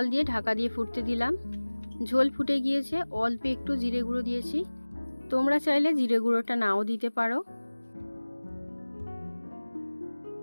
দিয়ে ঢাকা দিয়ে ফুটতে দিলাম। ঝোল ফুটে গিয়েছে, অল্প একটু জিরে গুঁড়ো দিয়েছি, তোমরা চাইলে জিরে গুঁড়োটা নাও দিতে পারো।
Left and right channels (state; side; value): inverted; both; correlation -1.00